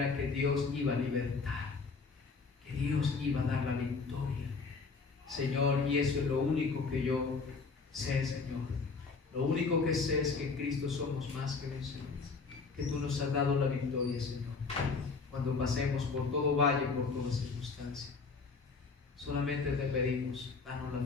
que Dios iba a libertar, que Dios iba a dar la victoria, Señor, y eso es lo único que yo sé, Señor. Lo único que sé es que en Cristo somos más que vencedores, que tú nos has dado la victoria, Señor, cuando pasemos por todo valle, por toda circunstancia. Solamente te pedimos, danos la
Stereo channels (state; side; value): quieter; right; 4.5 dB